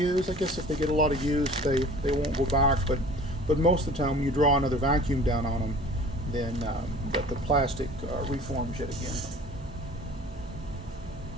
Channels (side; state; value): both; normal; correlation 0.46